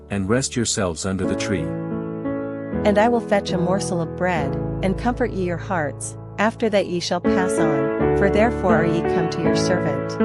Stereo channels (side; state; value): both; identical; correlation 1.00